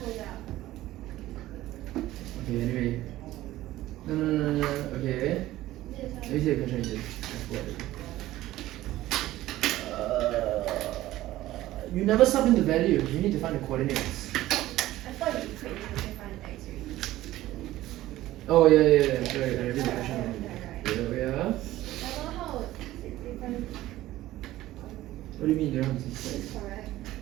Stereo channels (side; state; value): left; quieter; 15.5 dB